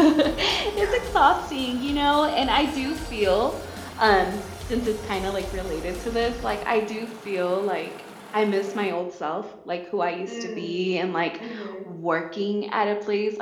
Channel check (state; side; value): identical; both; correlation 1.00